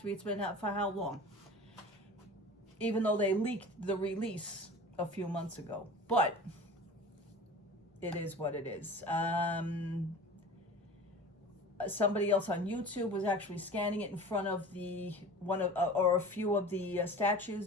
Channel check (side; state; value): both; normal; correlation 0.38